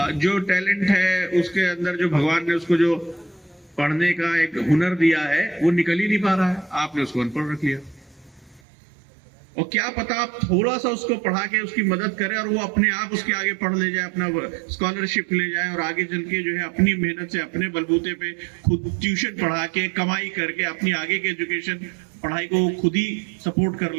जो टैलेंट है, उसके अंदर जो भगवान ने उसको जो पढ़ने का एक हुनर दिया है, वो निकल ही नहीं पा रहा है। आपने उसको अनपढ़ रख लिया। और क्या पता आप थोड़ा सा उसको पढ़ा के उसकी मदद करें और वो अपने आप उसके आगे पढ़ ले जाए, अपना स्कॉलरशिप ले जाए और आगे चल के जो है अपनी मेहनत से, अपने बलबूते पे खुद ट्यूशन पढ़ा के, कमाई करके अपनी आगे की एजुकेशन, पढ़ाई को खुद ही सपोर्ट कर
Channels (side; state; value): left; drops out; at 8.6 s